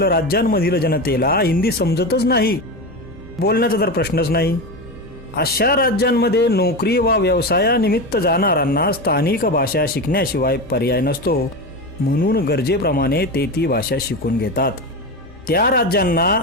राज्यांमधील जनतेला हिंदी समजतच नाही, बोलण्याचा तर प्रश्नच नाही. अशा राज्यांमध्ये नोकरी वा व्यवसायानिमित्त जाणाऱ्यांना स्थानिक भाषा शिकण्याशिवाय पर्याय नसतो, म्हणून गरजेप्रमाणे ते ती भाषा शिकून घेतात. त्या राज्यांना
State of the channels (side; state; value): both; normal; correlation 0.20